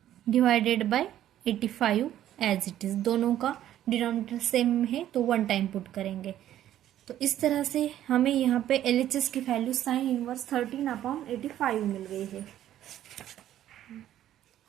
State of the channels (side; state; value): left; quieter; 12.1 dB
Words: divided by 85 as it is. दोनों का डिनोमिनेटर सेम है तो 1 टाइम पुट करेंगे। तो इस तरह से हमें यहाँ पे LHS की वैल्यू साइन इनवर्स 13/85 मिल गई है।